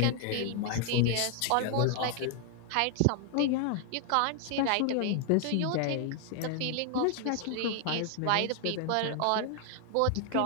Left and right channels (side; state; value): both; different; correlation 0.00